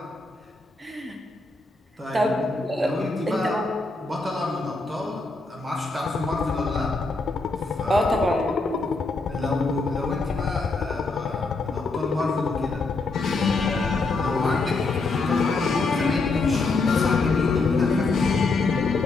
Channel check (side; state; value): right; quieter; 3.5 dB